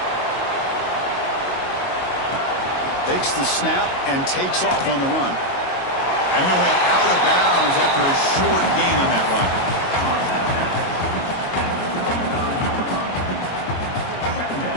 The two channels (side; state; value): right; late; 22 ms